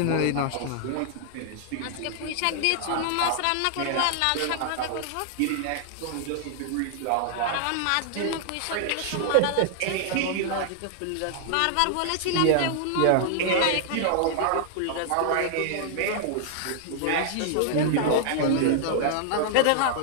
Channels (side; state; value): both; different; correlation -0.01